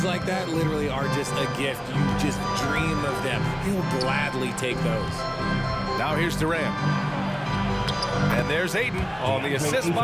like that literally are just a gift. You just dream of them. He'll gladly take those. Now here's Durant. And there's Ayton on the assist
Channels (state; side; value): identical; both; correlation 1.00